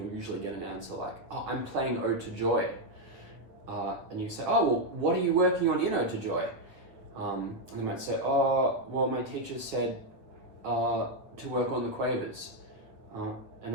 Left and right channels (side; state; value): left; late; 9.1 ms